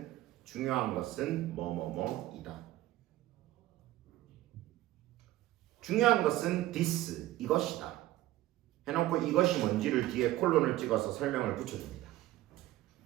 중요한 것은 뭐뭐뭐이다. 중요한 것은 this 이것이다. 해놓고 이것이 뭔지를 뒤에 콜론을 찍어서 설명을 붙여줍니다.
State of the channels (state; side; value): quieter; left; 15.7 dB